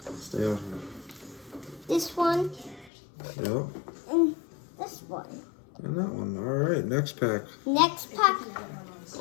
Stay out here. this one. Yep. And this one. And that one. All right, next pack. Next pack.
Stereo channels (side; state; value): right; drops out; at 2.9 s